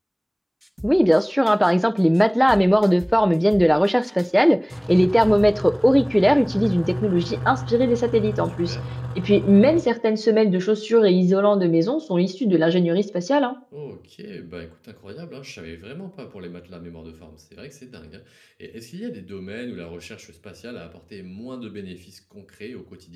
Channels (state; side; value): identical; both; correlation 1.00